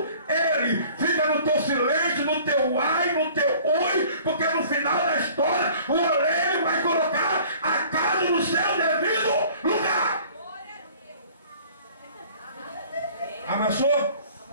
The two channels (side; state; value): both; inverted; correlation -0.50